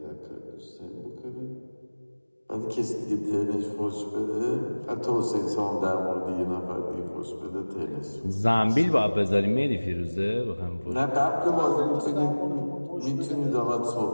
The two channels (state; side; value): inverted; both; correlation -1.00